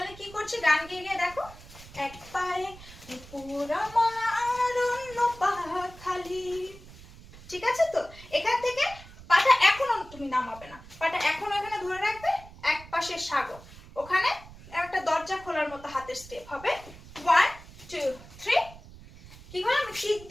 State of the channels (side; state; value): right; noise; rumble, 19 dB below the sound